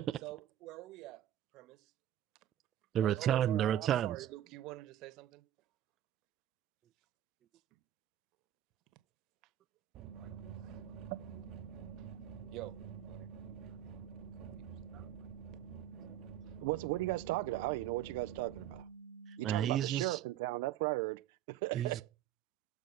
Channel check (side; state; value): left; quieter; 11.9 dB